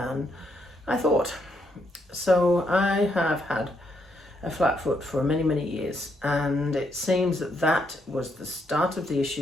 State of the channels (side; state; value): both; normal; correlation 0.76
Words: I thought. So I have had a flat foot for many, many years, and it seems that that was the start of the